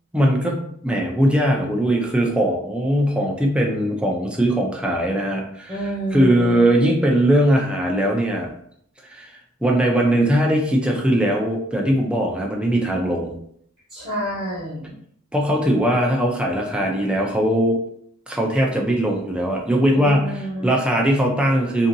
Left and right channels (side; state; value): both; normal; correlation 0.72